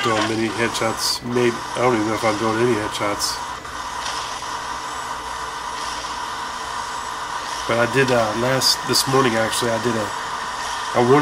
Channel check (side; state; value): both; identical; correlation 1.00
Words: doing many headshots. Maybe I don't even know if I'm doing any headshots. But I did this morning actually. I